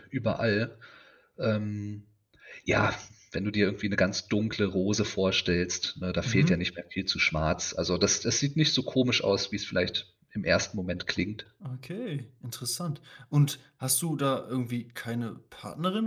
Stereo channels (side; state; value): both; identical; correlation 1.00